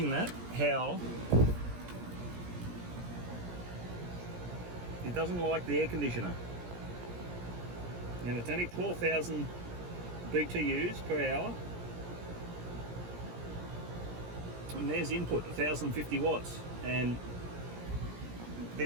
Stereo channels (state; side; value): late; left; 17 ms